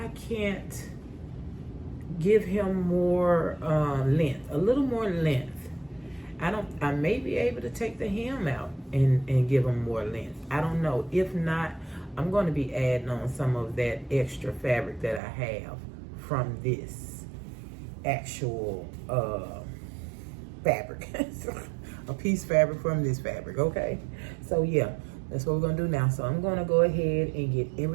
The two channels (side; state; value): left; drops out; at 15.2 s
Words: can't give him more length, a little more length. I may be able to take the hem out and give him more length. I don't know. If not, I'm going to be adding on some of that extra fabric that I have from this actual fabric. A piece fabric from this fabric, okay? So yeah, that's what we're going to do now. So I'm going to go ahead and get